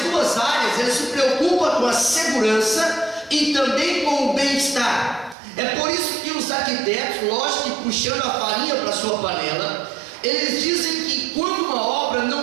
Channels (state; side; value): drops out; left; at 5.4 s